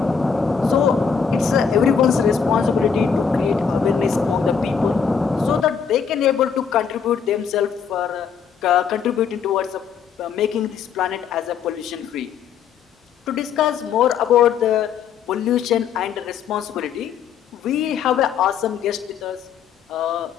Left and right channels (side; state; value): right; quieter; 6.8 dB